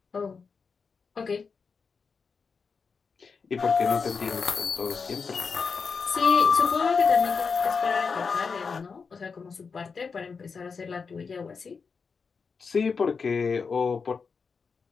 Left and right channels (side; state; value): right; quieter; 5.3 dB